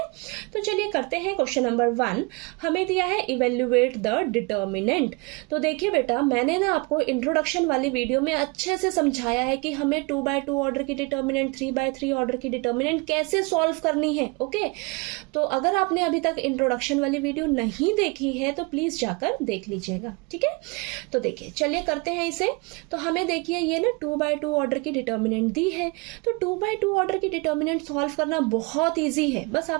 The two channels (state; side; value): quieter; left; 28.9 dB